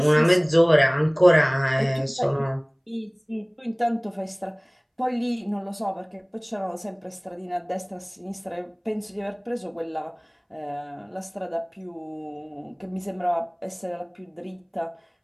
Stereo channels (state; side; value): identical; both; correlation 1.00